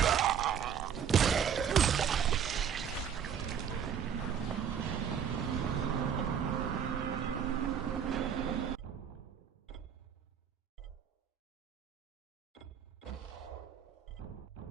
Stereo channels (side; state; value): left; quieter; 7.9 dB